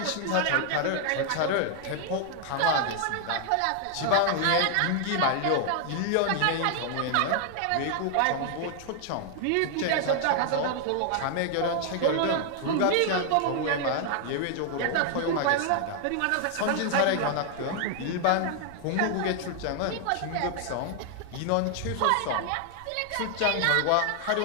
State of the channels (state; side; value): different; both; correlation 0.00